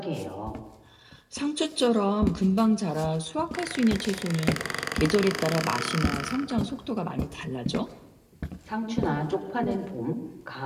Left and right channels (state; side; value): identical; both; correlation 1.00